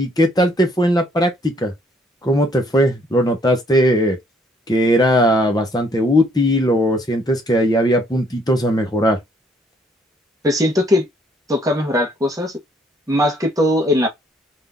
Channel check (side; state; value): both; normal; correlation 0.65